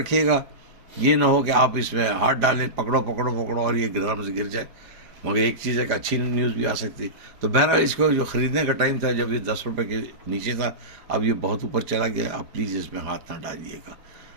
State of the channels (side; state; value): left; late; 4.9 ms